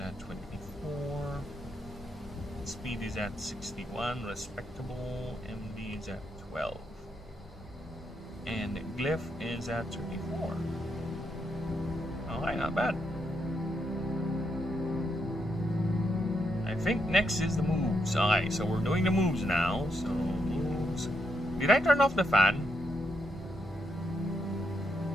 24. Speed is at 61, respectable. MD is at 12. And Glyph is at 34. Alright, not bad. I think next is the moves. Alright, so we're doing the moves now. So, moves. Did I turn off the fan?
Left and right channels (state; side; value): normal; both; correlation 0.80